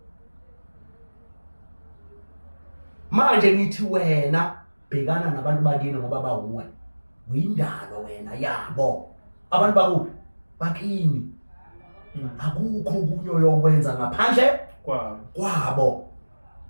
manje ngithi wena bhekana nabantu bakini ngoba bawuwe uyindalo wena yabo abantu bakuphi bakini akukho kunyo yokwenza ngaphandle kwabo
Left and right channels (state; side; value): inverted; both; correlation -1.00